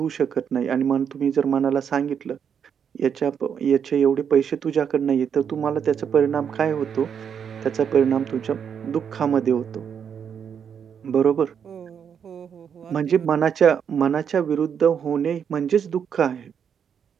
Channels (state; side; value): quieter; left; 7.6 dB